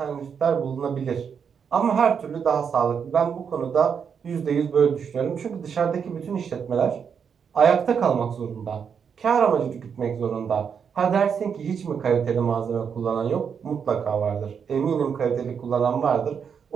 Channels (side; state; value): left; quieter; 6.9 dB